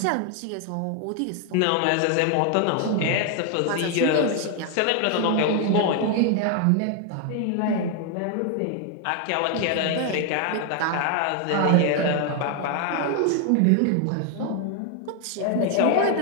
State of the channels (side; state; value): both; different; correlation 0.00